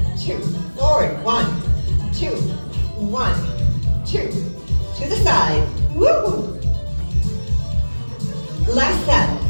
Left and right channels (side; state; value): both; inverted; correlation -1.00